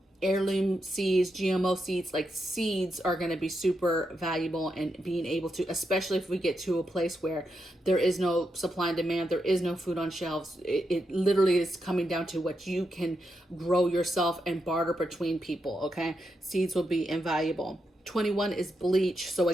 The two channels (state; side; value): normal; both; correlation 0.84